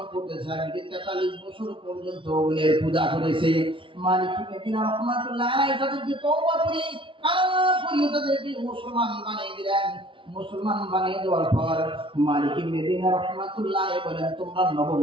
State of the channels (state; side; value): late; left; 0.25 ms